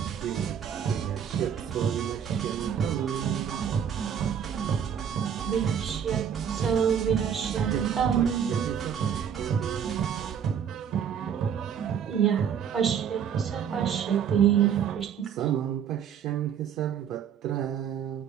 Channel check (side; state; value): left; quieter; 8.2 dB